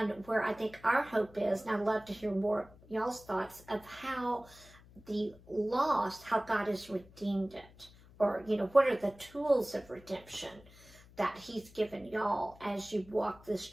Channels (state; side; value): noise; left; hum, 23 dB below the sound